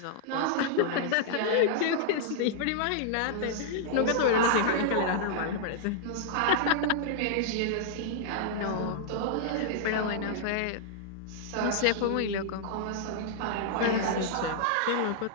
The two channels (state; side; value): different; both; correlation -0.01